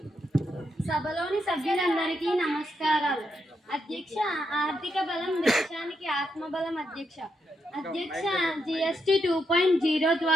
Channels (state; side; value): normal; both; correlation 0.81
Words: సభలోని సభ్యులందరికీ నమస్కారాలు. అధ్యక్ష, ఆర్థిక బలం దేశానికి ఆత్మబలం. అధ్యక్ష GST 2.0